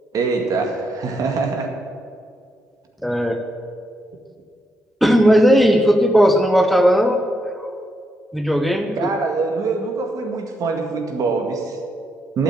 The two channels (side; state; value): both; normal; correlation 0.81